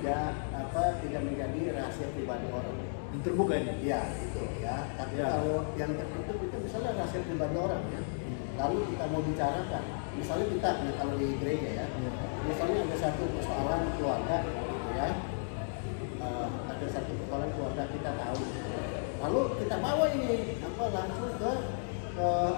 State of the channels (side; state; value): right; silent; digital silence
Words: menjadi rahasia pribadi orang. Yang terbuka ini? Iya, itu ya. Tapi kalau yang tertutup itu misalnya rahasia pribadi orang ya. Lalu kita mau bicarakan, misalnya kita kalau di gereja ya, misalnya ada satu persoalan keluarga gitu ya. Ada satu persoalan keluarga kita tahu. Lalu kita bawa ini langsung ke